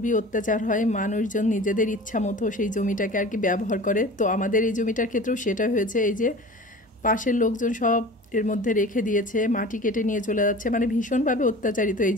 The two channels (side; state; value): both; normal; correlation 0.38